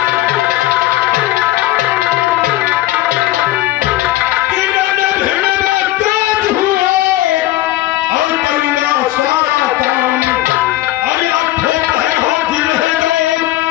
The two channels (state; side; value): quieter; right; 15.5 dB